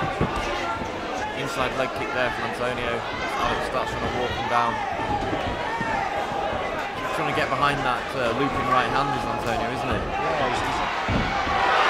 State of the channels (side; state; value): both; identical; correlation 1.00